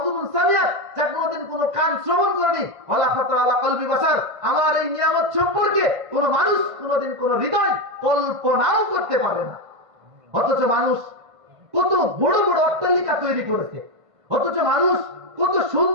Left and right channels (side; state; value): left; late; 1.5 ms